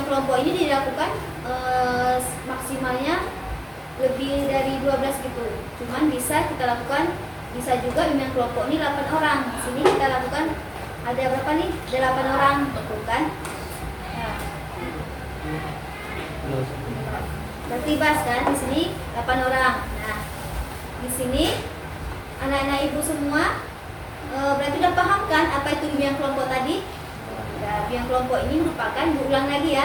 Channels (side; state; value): both; identical; correlation 1.00